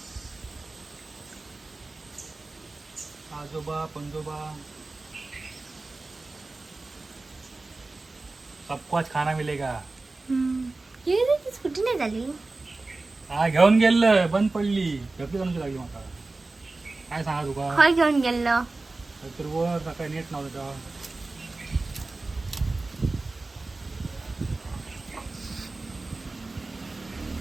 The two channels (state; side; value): quieter; left; 3.3 dB